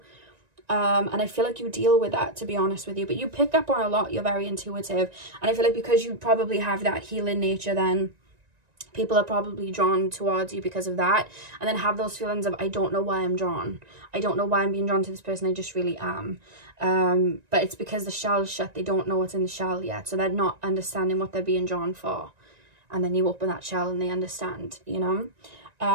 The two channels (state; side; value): late; left; 1.9 ms